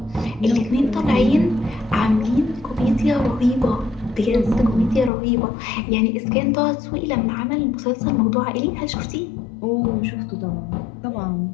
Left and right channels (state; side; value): drops out; right; at 5.1 s